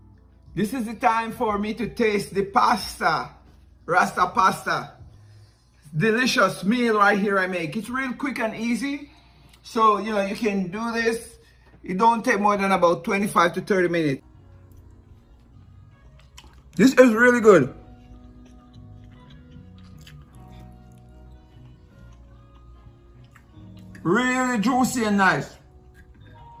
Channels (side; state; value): both; identical; correlation 1.00